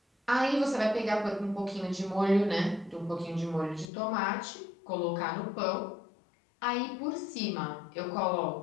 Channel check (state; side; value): drops out; right; at 3.9 s